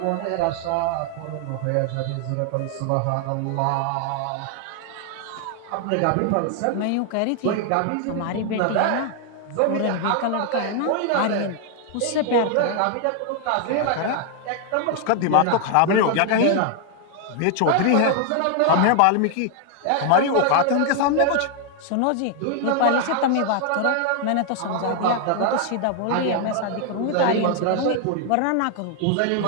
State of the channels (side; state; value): both; different; correlation 0.00